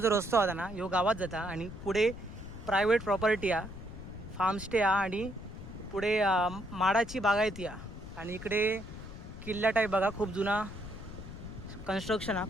रस्तो होता ना ह्यो गावात जाता आणि पुढे प्रायव्हेट प्रॉपर्टी आहे, फार्मस्टे आहे आणि पुढे माडाची बागायती आहे. आणि इकडे किल्ला टाईप बघा, खूप जुना कन्स्ट्रक्शन हा,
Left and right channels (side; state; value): left; noise; rumble, 12 dB below the sound